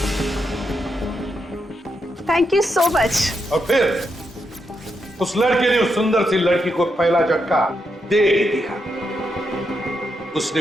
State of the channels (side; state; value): both; normal; correlation 0.82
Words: Thank you so much. और फिर उस लड़के ने उस सुंदर सी लड़की को पहला झटका दे ही दिया।